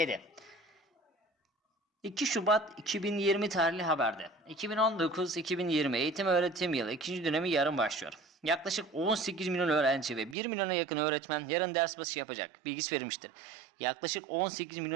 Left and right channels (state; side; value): drops out; left; at 10.4 s